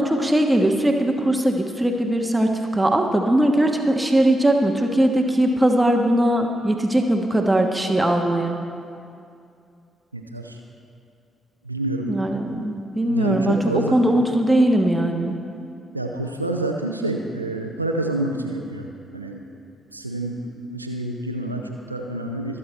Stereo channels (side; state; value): both; normal; correlation 0.79